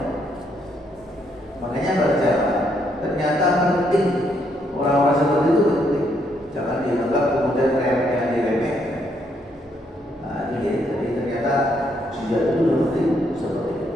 Makanya baca, ternyata penting. Orang-orang seperti itu penting, jangan dianggap kemudian remeh diremehkan. Nah, ini jadi ternyata jihad itu penting seperti itu.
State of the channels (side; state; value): both; normal; correlation 0.74